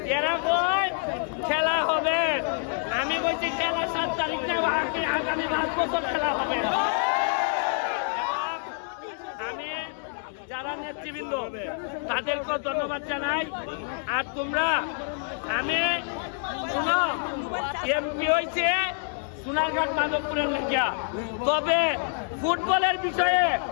এরা কই খেলা হবে, আমি বলছি খেলা 7 তারিখ না আগামী 5 বছর খেলা হবে। আমি যারা নেতৃবৃন্দ তাদেরকে ধন্যবাদ জানাই। আর তোমরা আমি শুনো এমপি হয়েছে সোনারঘাট মাধবপুরের লেগিয়া, তবে ফুটবলের বিষয়ে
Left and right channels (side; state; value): right; silent; 59 dB below the other